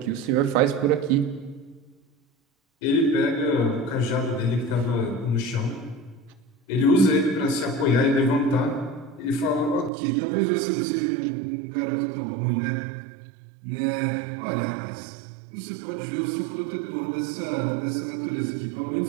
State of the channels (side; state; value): left; drops out; at 9.9 s